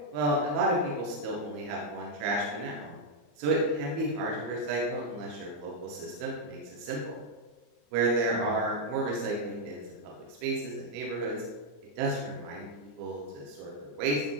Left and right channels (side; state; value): left; late; 34 ms